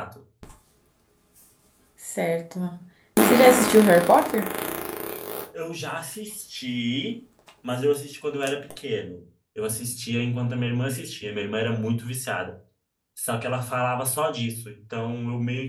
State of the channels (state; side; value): identical; both; correlation 1.00